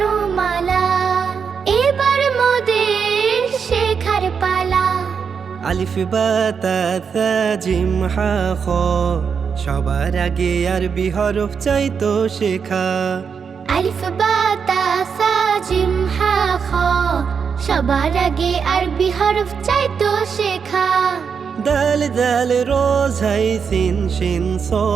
এবার মোদের শেখার পালা। আলিফ বা তা থা জিম হা খ, সবার আগে আরবি হরফ চাইতো শেখা। আলিফ বা তা সা জিম হা খ, সবার আগে আরবি হরফ চাইতো শেখা। দাল দাল রোজ হাই সিন শিন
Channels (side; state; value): left; quieter; 6.3 dB